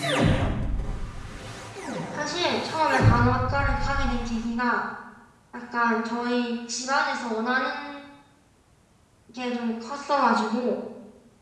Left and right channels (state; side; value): identical; both; correlation 1.00